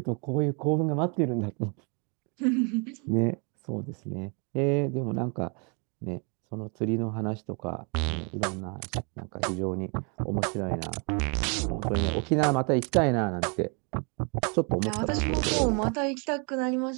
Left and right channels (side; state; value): left; quieter; 35.4 dB